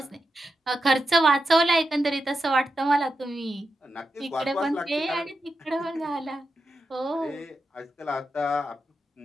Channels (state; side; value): normal; both; correlation 0.88